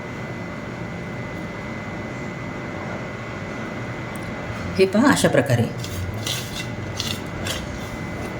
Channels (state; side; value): identical; both; correlation 1.00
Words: हे पहा अशा प्रकारे